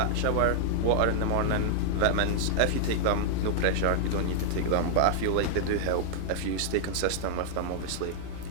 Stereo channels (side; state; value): both; different; correlation 0.00